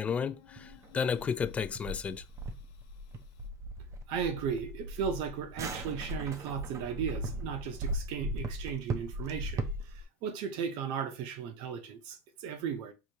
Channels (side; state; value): both; normal; correlation 0.27